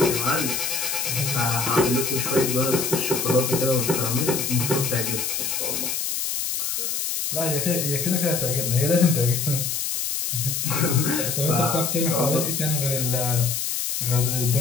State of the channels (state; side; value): noise; left; hiss, 1 dB below the sound